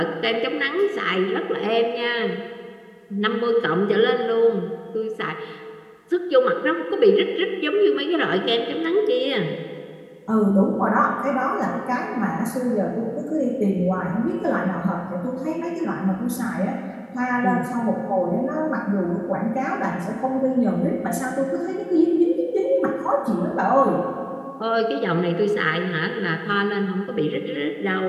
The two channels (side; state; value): both; identical; correlation 1.00